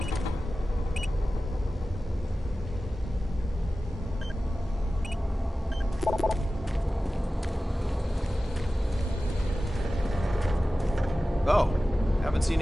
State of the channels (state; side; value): normal; both; correlation 0.95